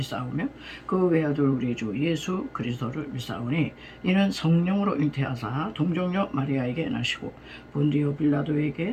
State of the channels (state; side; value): identical; both; correlation 1.00